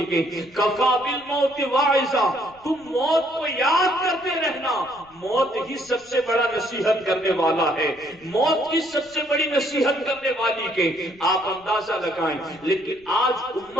ہیں کفا بالموت واعظا، تم موت کو یاد کرتے رہنا، موت ہی سب سے بڑا نصیحت کرنے والا ہے، موت ہی سب سے بڑی نصیحت کرنے والی کہ آپ اندازہ لگائیں. لیکن آج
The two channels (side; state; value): left; noise; rumble, 29 dB below the sound